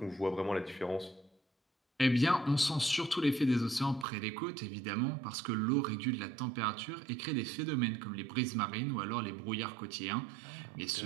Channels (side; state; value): left; drops out; at 4.0 s